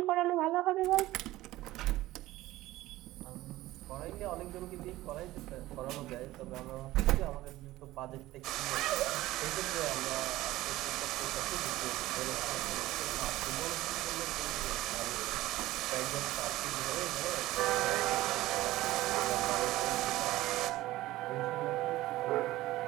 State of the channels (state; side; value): quieter; left; 16.8 dB